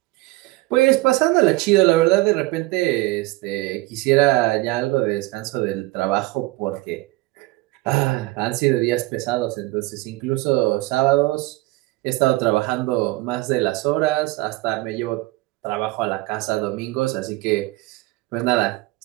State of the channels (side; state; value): left; quieter; 20.5 dB